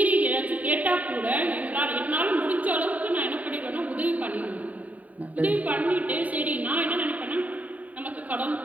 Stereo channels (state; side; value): late; left; 0.071 ms